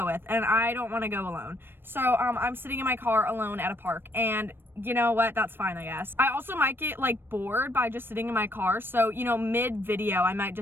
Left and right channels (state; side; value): late; left; 0.10 ms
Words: with, and I don't want to go alone. So I'm sitting in my car alone at a park, and you know what, that's fine, I guess. I also might get like bored by just sitting in my car, so you know, mid video I might